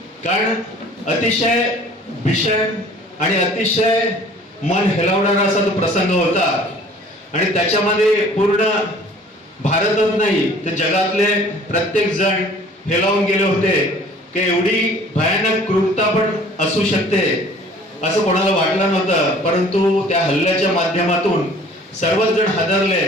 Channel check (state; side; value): normal; both; correlation 0.51